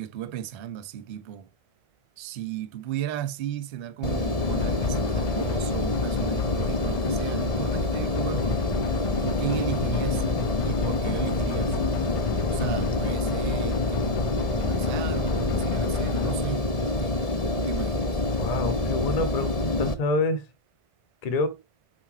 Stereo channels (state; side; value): late; right; 1.7 ms